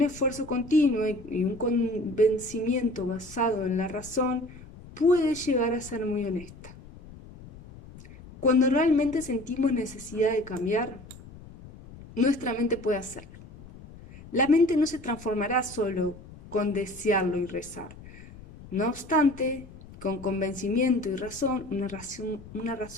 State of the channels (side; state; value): left; noise; rumble, 18 dB below the sound